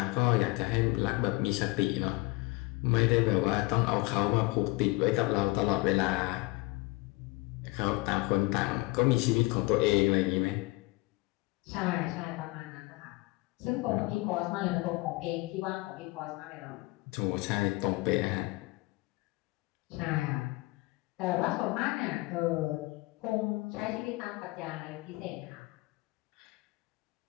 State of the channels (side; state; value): right; quieter; 23.2 dB